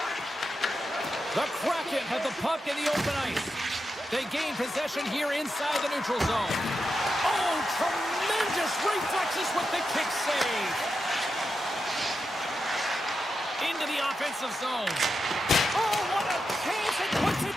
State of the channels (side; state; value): both; normal; correlation 0.88